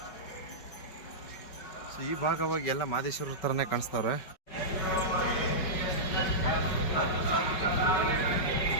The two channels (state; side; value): late; right; 5.2 ms